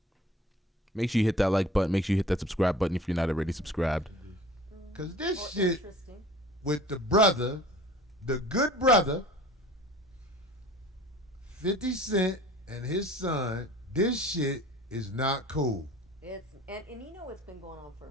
Make sure you hit that like button. Make sure you hit that subscribe button if you're not already subscribed. Because this shit with the brother, the good brother, 50 Cent and his son, this shit is not cool. And you know it's been going on for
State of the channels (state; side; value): normal; both; correlation 0.45